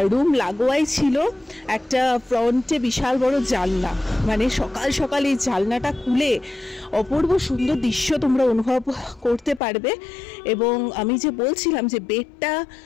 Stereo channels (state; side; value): drops out; right; at 9.6 s